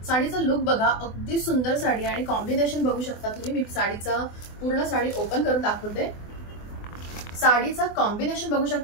साडीचा लुक बघा, अगदी सुंदर साडी आणि कॉम्बिनेशन बघू शकता तुम्ही. मी साडीचा पूर्ण साडी ओपन करून दाखवते. साडीचा कॉम्बिनेशन बघू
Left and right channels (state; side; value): late; right; 24 ms